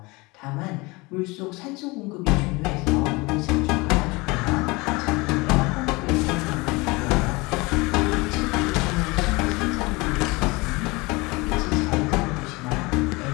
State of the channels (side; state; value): right; quieter; 24.5 dB